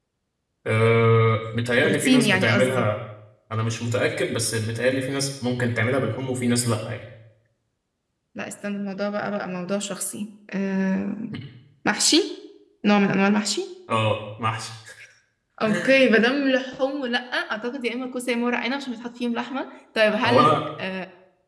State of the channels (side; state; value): both; identical; correlation 1.00